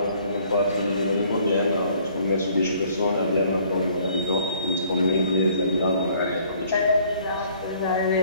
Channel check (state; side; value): inverted; both; correlation -0.60